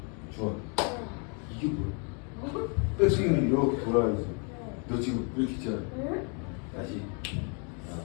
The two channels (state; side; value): quieter; right; 36.9 dB